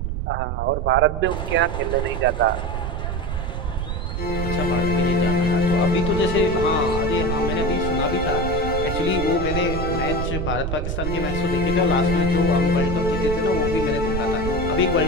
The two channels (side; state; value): right; noise; rumble, 3 dB below the sound